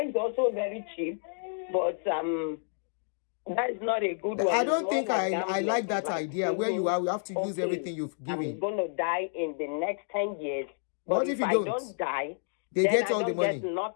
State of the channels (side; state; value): right; silent; digital silence